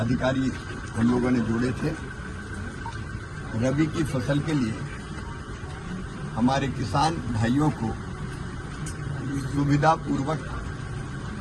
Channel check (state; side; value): identical; both; correlation 1.00